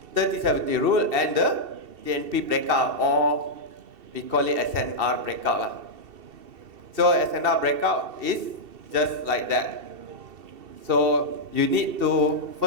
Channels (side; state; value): left; late; 2.7 ms